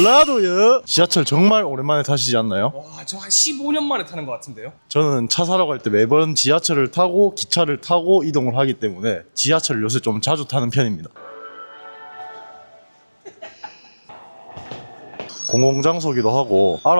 지하철 정말 오랜만에 타시지 않나요? 와, 저 한 15년 만에 타는 것 같은데요? 저는 차 사러 갈 때 매번 지하철을 타고 기차를 타고 이동을 하기 때문에 지하철을 요새 좀 자주 타는 편입니다. 공공장소기도 하고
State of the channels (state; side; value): inverted; both; correlation -1.00